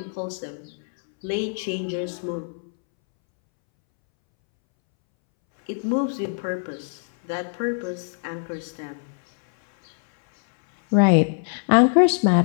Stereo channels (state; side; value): silent; right; 63 dB below the other